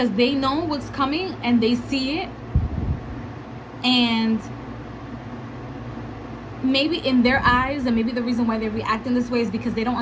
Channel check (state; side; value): identical; both; correlation 1.00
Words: they know what's coming and they see it. And maybe in their eyes, and maybe the reason why they react in this way is because they don't